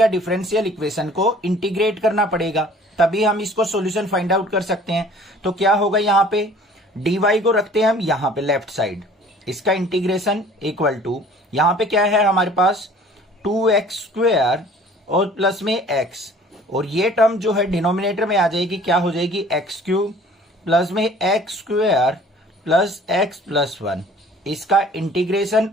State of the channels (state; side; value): normal; both; correlation 0.50